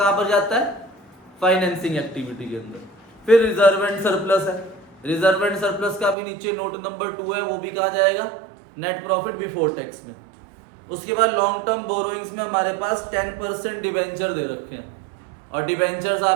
पर जाता है? फाइनेंसिंग एक्टिविटी के अंदर। फिर रिजर्व एंड सरप्लस है। रिजर्व एंड सरप्लस का भी नीचे नोट नंबर 2 है, वो भी कहा जाएगा नेट प्रॉफिट बिफोर टैक्स में। उसके बाद लॉन्ग टर्म बोरोइंग्स में हमारे पास 10% डिवेंचर दे रखे हैं, और डिवेंचर्स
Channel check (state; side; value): drops out; left; at 6.2 s